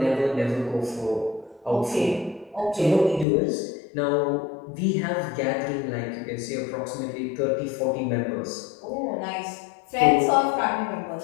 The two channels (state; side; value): drops out; right; at 3.2 s